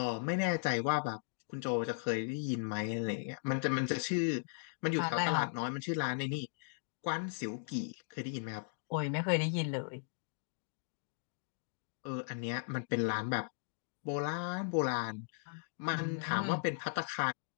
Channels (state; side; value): silent; right; digital silence